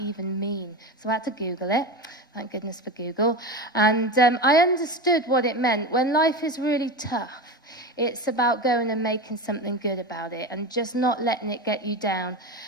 mean? So I had to Google it. Thank goodness for Google. And I understood what it meant. When life is really tough, it's about going and making something good about it and just not letting it get you down.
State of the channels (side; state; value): both; normal; correlation 0.23